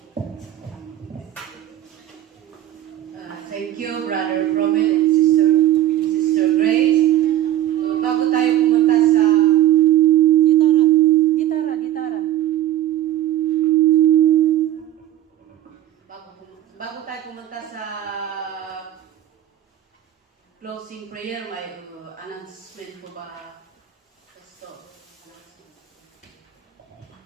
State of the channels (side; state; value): left; quieter; 12.9 dB